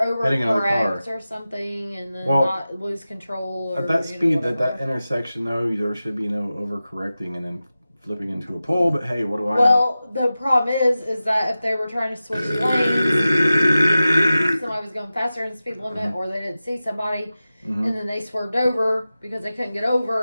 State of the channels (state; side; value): inverted; both; correlation -0.95